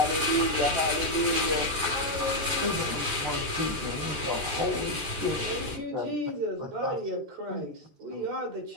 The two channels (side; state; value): left; late; 13 ms